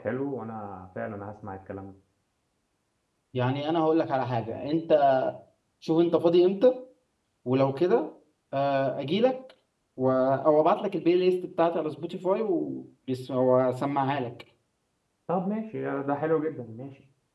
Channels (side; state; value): both; identical; correlation 1.00